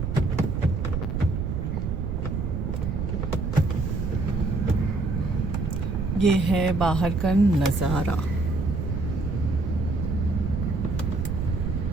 ये है बाहर का नज़ारा।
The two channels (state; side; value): noise; right; rumble, 1 dB below the sound